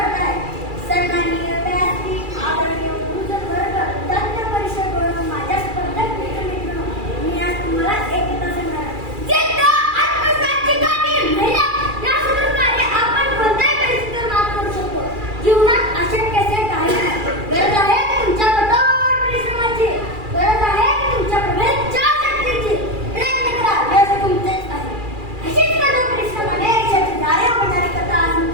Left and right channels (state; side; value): late; left; 2.4 ms